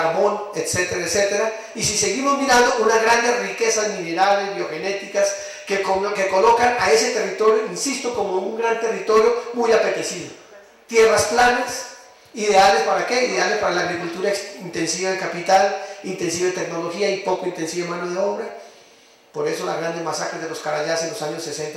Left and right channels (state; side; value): identical; both; correlation 1.00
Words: etcétera, etcétera. Y si seguimos mirando, unas grandes riquezas minerales, biogenéticas, que colocan a ese territorio, insisto, como un gran territorio muy apetecido. Tierras planas, ideales para qué? Ideales para la agricultura intensiva de capital, intensiva de tecnología y poco intensiva de mano de obra. Por eso las grandes masacres de los Carayás en los años